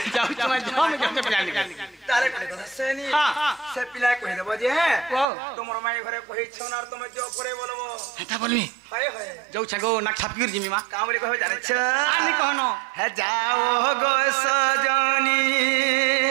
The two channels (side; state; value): left; drops out; at 5.2 s